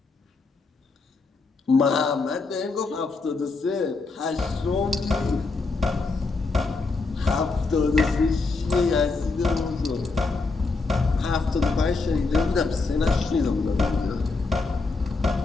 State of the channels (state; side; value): quieter; right; 3.9 dB